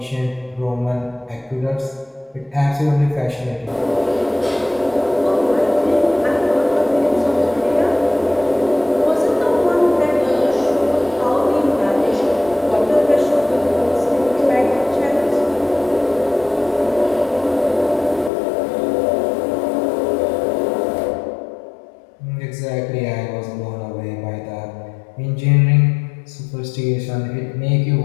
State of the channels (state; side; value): drops out; right; at 18.3 s